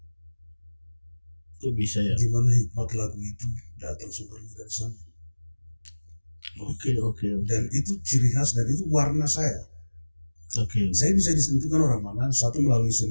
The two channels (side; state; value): both; inverted; correlation -1.00